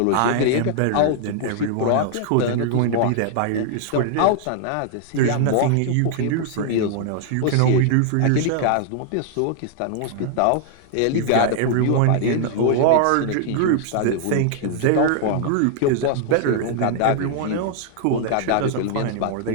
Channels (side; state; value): both; different; correlation -0.01